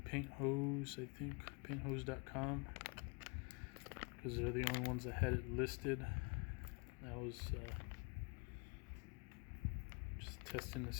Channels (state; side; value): quieter; right; 31.8 dB